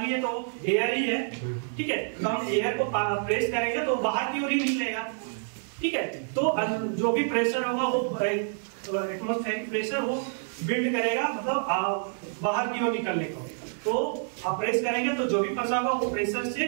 है तो एयर ही है। ठीक है, तो हम एयर को प्रेस करेंगे तो बाहर की ओर ही निकलेगा। ठीक है, तो जो भी प्रेशर होगा वो एटमॉस्फेरिक प्रेशर वो बिल्ड करेगा, मतलब बाहर की ओर निकलने को। तो आप प्रेस करेंगे तो जो भी फंसा होगा वो प्रेशर से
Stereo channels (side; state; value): left; silent; digital silence